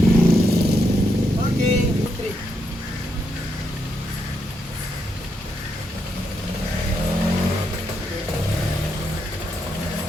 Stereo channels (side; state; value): both; normal; correlation 0.80